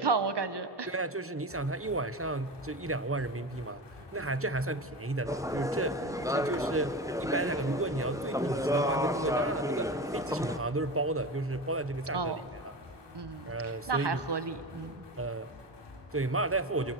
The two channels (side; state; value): both; normal; correlation 0.26